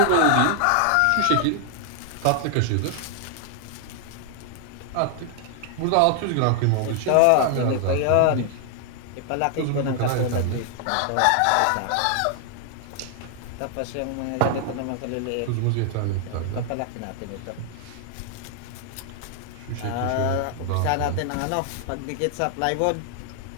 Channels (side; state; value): both; different; correlation 0.00